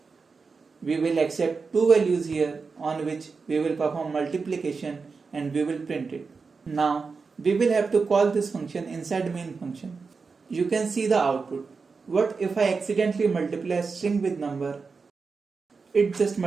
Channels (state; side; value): quieter; left; 4.8 dB